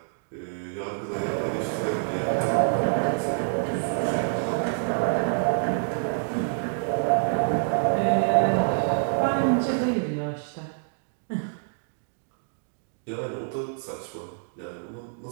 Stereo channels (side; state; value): left; silent; digital silence